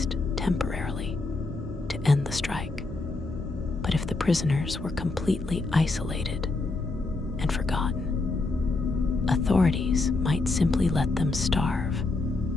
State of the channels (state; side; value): quieter; right; 3.3 dB